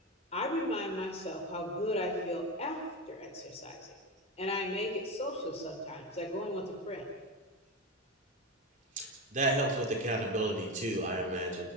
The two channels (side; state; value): both; normal; correlation 0.18